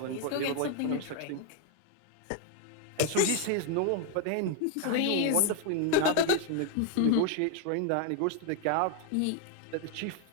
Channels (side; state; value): both; different; correlation 0.01